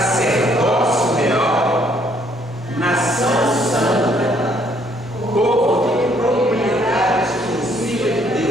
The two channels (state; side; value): normal; both; correlation 0.66